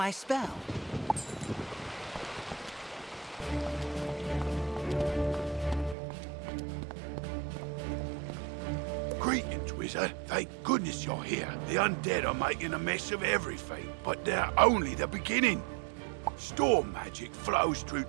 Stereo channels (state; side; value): drops out; left; at 6.0 s